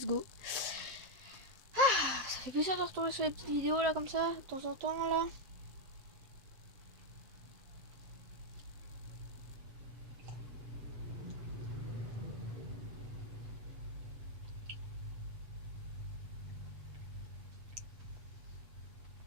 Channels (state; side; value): late; left; 7.5 ms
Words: go. Ah, ça fait plaisir de retourner sur les petites vidéos là comme ça, de temps en temps là.